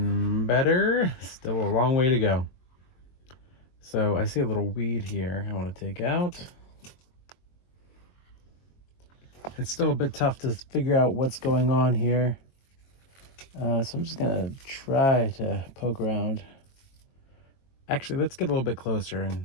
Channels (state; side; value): late; right; 22 ms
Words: Still a long way to go. So I see a little weed here I want to take out. It's still a bit tough to figure out what's going on here. So I'm just gonna try to poke around. Actually, let's get a little bit closer and